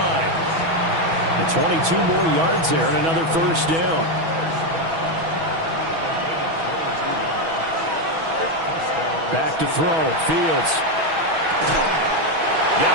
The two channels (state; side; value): late; left; 6.2 ms